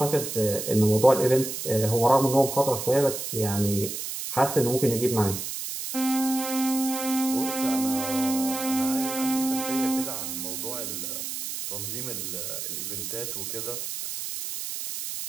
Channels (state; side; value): noise; right; hiss, 5 dB below the sound